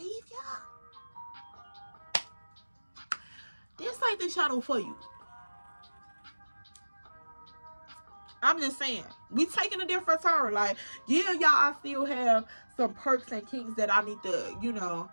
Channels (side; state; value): both; inverted; correlation -1.00